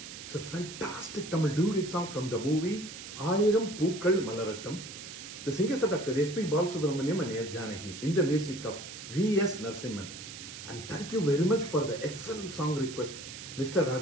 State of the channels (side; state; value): right; noise; hiss, 12 dB below the sound